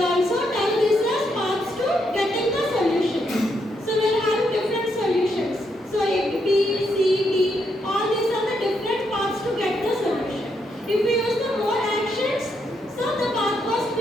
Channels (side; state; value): both; normal; correlation 0.78